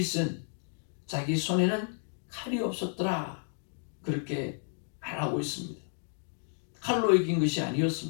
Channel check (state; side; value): silent; right; 57 dB below the other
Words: 자기 손에는 칼이 없었더라 그렇게 말하고 있습니다. 칼로 이긴 것이